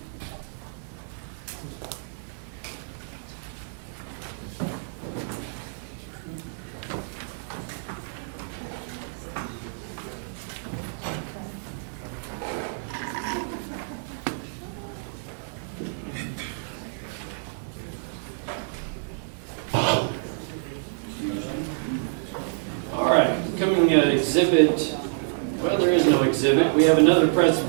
Well, there is no exhibit. We have another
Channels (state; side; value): silent; left; 55 dB below the other